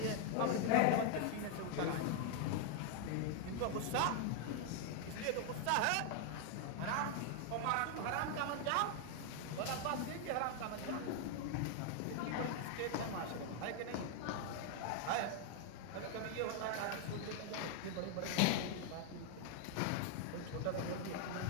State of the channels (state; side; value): different; both; correlation 0.00